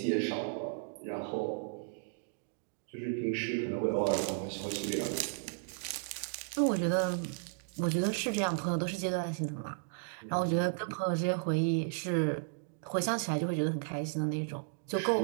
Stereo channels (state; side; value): silent; left; digital silence